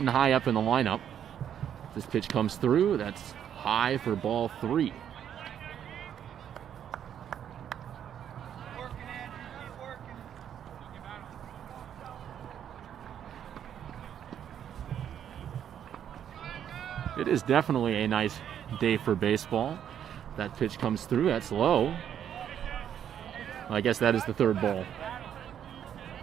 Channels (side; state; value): left; quieter; 9.4 dB